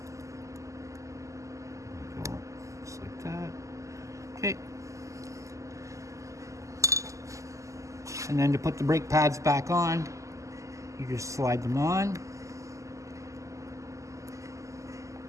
Just like that. Okay. And then to put the brake pads back on, you just slide them on.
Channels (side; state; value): left; late; 0.16 ms